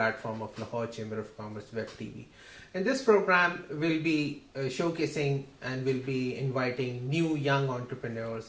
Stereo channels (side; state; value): both; identical; correlation 1.00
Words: of Lahore Chamber of Commerce Web TV. In this program, we'll be showcasing and we'll be inviting new young